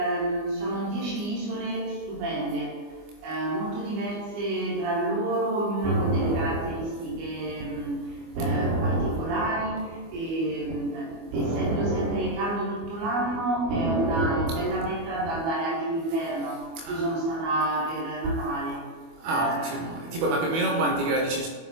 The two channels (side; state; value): left; late; 24 ms